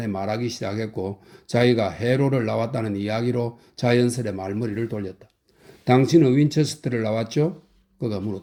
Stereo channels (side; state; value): both; identical; correlation 1.00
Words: 말하기 시작했고 자기가 해로를 나왔다는 이야기로 자연스레 말머리를 돌렸다. 당신은 윈체스터를 나왔죠? 그가